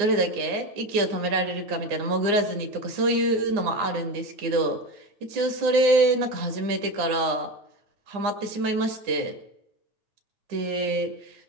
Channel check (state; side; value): late; left; 9.8 ms